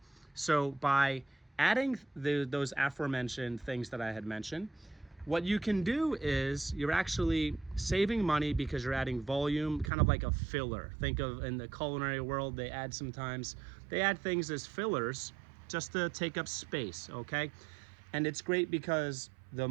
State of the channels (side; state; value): left; drops out; at 9.9 s